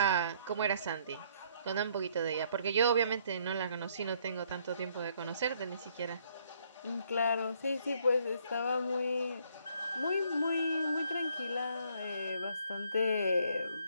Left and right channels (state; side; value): inverted; both; correlation -0.66